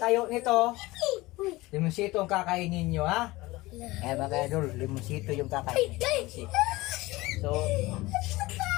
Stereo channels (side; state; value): right; quieter; 20.2 dB